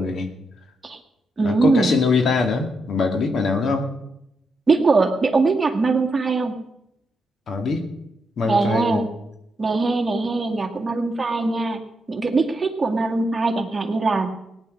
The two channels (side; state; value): both; normal; correlation 0.83